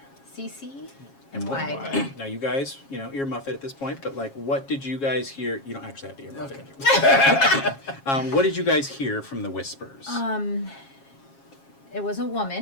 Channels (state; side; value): late; right; 7.3 ms